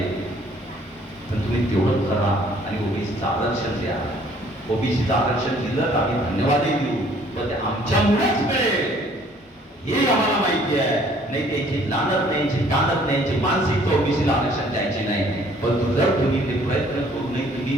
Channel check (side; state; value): both; normal; correlation 0.58